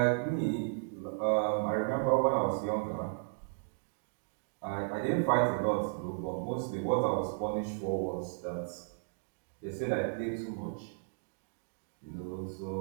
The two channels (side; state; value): left; silent; digital silence